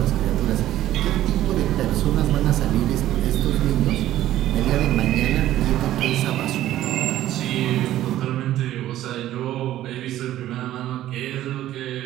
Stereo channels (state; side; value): quieter; left; 13.6 dB